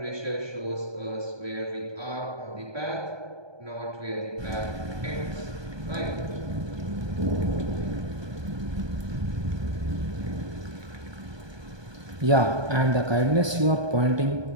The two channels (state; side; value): late; left; 1.2 ms